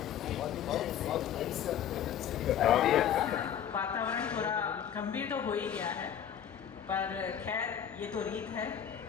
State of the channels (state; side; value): quieter; right; 9.3 dB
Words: वातावरण थोड़ा गंभीर तो हो ही गया है, पर खैर ये तो रीत है,